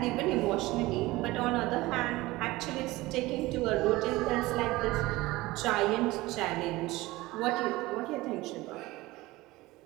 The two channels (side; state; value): left; quieter; 19.5 dB